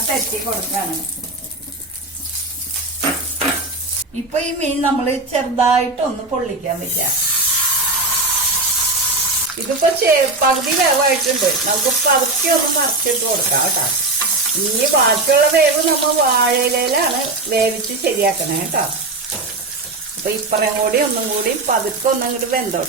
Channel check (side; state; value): left; quieter; 3.1 dB